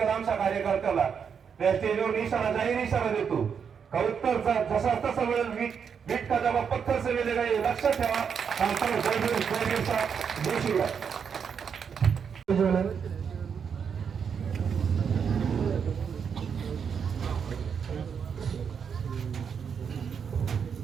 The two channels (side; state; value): left; quieter; 6.9 dB